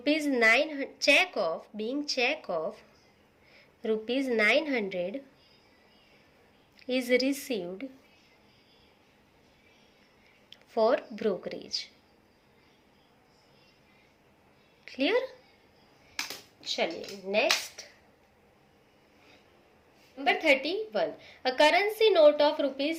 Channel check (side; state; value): both; identical; correlation 1.00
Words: 900 cheque of, being cheque of rupees 900 is received for brokerage. Clear? चलिए next, number 31, a currency note of